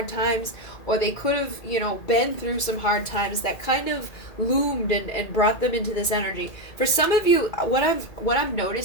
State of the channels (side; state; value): right; late; 2.1 ms